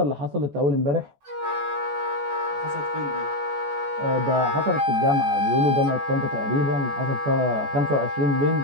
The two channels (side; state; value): left; late; 14 ms